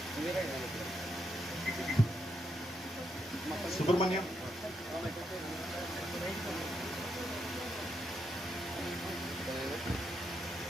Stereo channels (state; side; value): normal; both; correlation 0.80